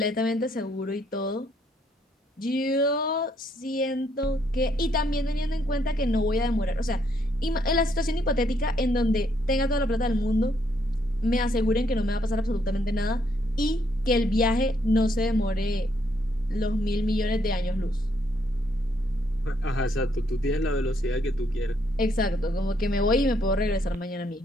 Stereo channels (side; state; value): both; normal; correlation 0.72